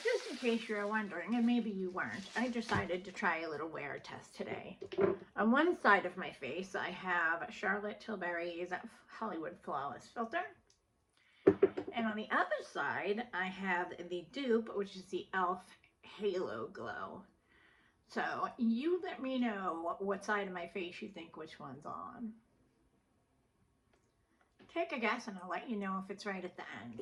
just in case you're wondering, and maybe you weren't, I decided to try a little wear test today. On one side of my face, I have Charlotte Tilbury's Hollywood Flawless Filter. And on the other side, I have the dupe, which is the e.l.f. Halo Glow. So you let me know what side of my face you think which one's on. Take a guess and I'll let you know if it's right at the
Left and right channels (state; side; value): identical; both; correlation 1.00